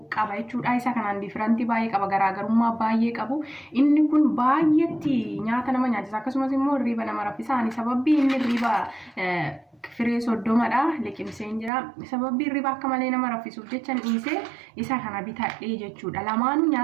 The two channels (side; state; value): left; drops out; at 11.7 s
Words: qaba jechuudha. Isa kanaan difirantii baay'ee qaba, garaagarummaa baay'ee qabu. Inni kun baay'eetti nyaata nama nyaachisa, akkasumas immoo hirriba nama raffisa. Sababbii inni hirriba firee soddomadha liqimseen jira. Sababbii hirriba akka malee nama raffisuuf jecha dhiisee isa kana bitadhee jechuudha. Lamaanuu